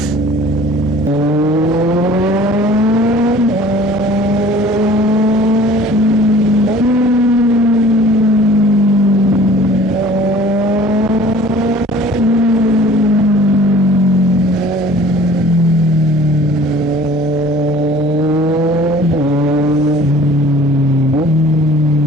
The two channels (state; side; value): normal; both; correlation 0.49